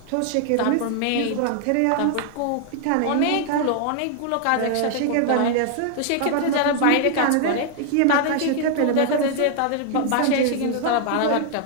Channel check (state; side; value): different; both; correlation 0.00